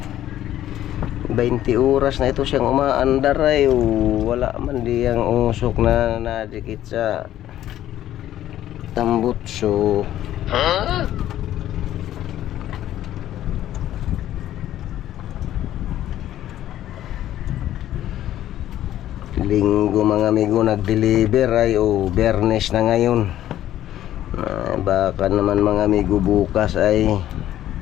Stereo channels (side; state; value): right; quieter; 12.6 dB